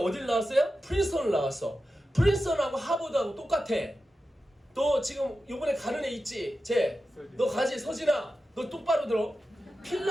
나왔어요? 프린스턴을 나왔어. 프린스턴하고 하버드하고 똑같아. 너 지금 요번에 가는 애 있지? 너 가지? 서진아 너 똑바로 들어.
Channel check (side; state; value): both; normal; correlation 0.92